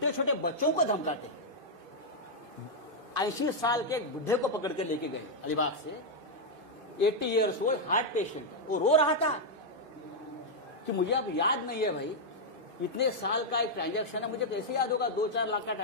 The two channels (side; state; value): left; late; 2.5 ms